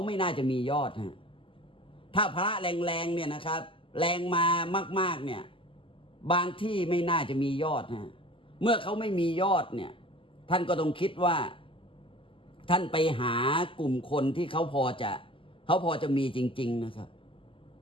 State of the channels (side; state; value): right; late; 0.25 ms